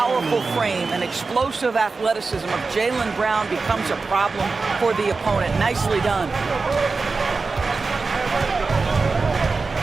frame and explosive athleticism of Jaylen Brown becomes a problem for the opponent. Nicely done.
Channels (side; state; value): left; quieter; 4.1 dB